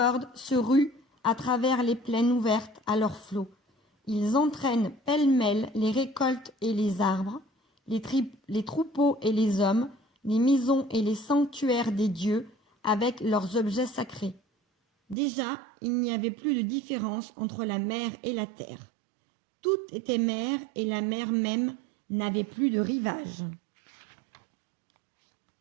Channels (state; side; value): drops out; left; at 15.2 s